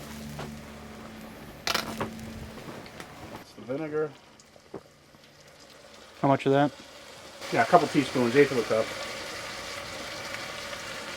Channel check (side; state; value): both; identical; correlation 1.00